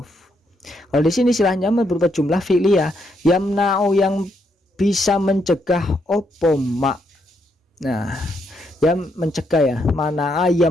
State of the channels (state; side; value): normal; both; correlation 0.76